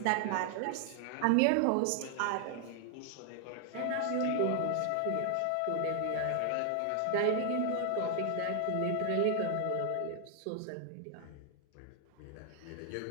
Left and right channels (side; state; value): both; different; correlation 0.00